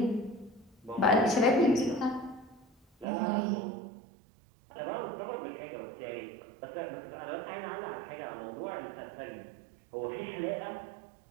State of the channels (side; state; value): left; drops out; at 3.1 s